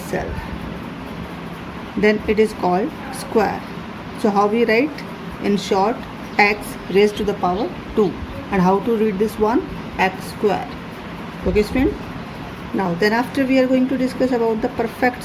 Then it is called square. So how we write? In short, x raised to the power 2. And how to read this one? X square. Okay student? Now then after we are going to discuss about the perfect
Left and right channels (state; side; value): identical; both; correlation 1.00